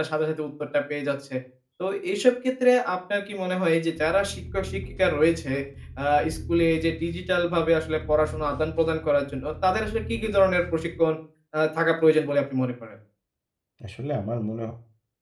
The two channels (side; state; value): both; identical; correlation 1.00